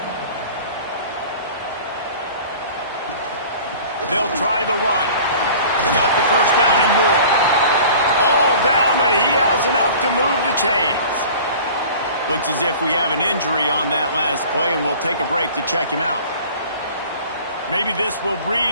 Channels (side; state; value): both; inverted; correlation -0.44